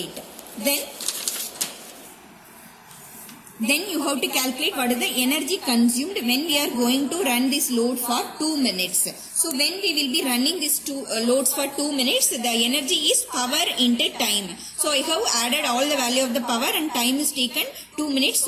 Then you have to calculate what is the energy consumed when we are going to run this load for 2 minutes. So when we will be running these two loads for 2 minutes, the energy is power into time. So I have added all the value of the power and time is taken 2 minutes.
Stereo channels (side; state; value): both; identical; correlation 1.00